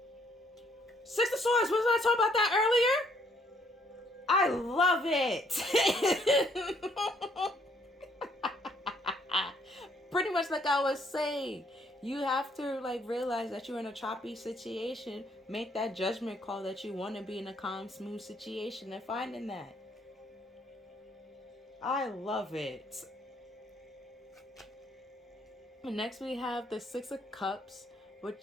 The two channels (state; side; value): normal; both; correlation 0.67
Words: Six of Swords, wasn't I talking about that earlier? I love it. Pretty much like I was saying, you have to realize that you're in a choppy situation, make that judgment call that you want to be in a calm, smooth situation, and finding that. I love it. And next we have the Six of Cups,